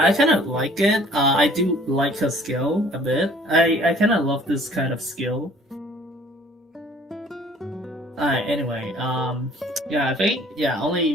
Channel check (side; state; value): both; normal; correlation 0.54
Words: I kind of like it. I do like her skill a bit. I kind of love this kind of skill. Alright, anyway, yeah, I think,